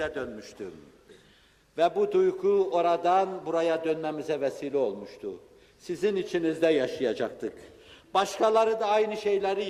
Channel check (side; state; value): both; identical; correlation 1.00